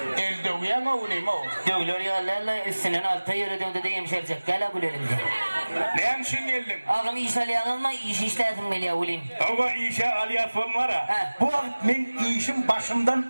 Elde uyan oğlum o. Dövülür ya lalla üstünün altı yürü dövde de yemşerecek. Gel abulerimde. Ne hemşin geldin? Ağam iş alayan alma, iş işledim meli avulim. Ama işe aliyatın var ha. He. Bu vakit men işim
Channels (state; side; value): inverted; both; correlation -1.00